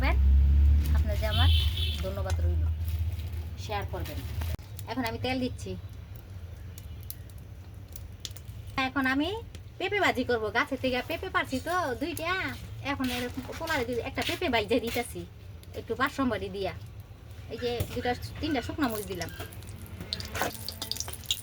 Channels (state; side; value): identical; both; correlation 1.00